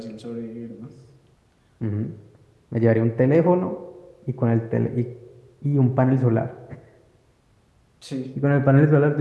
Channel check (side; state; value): both; identical; correlation 1.00